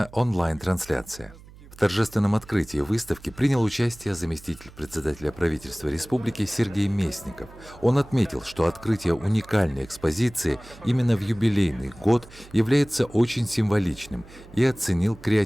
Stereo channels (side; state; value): right; noise; hum, 21 dB below the sound